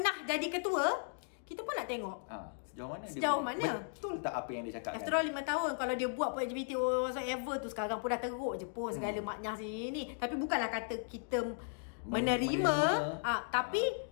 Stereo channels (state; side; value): silent; right; digital silence